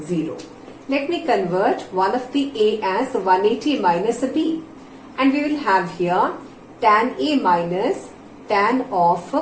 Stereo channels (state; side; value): identical; both; correlation 1.00